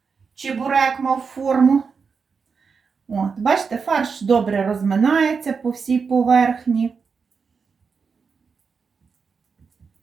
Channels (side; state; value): left; quieter; 5.5 dB